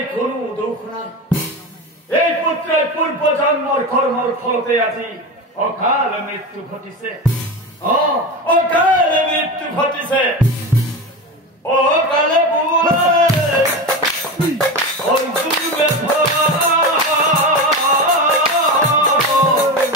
কোনো দুখ নাই এই পুত্রের পূর্ব জন্মর কর্মর ফলতে আজি অকাল মৃত্যু ঘটিছে অকালে মৃত্যু ঘটিছে অকালে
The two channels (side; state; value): both; normal; correlation 0.22